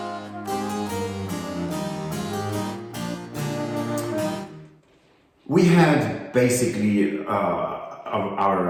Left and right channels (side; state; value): both; identical; correlation 1.00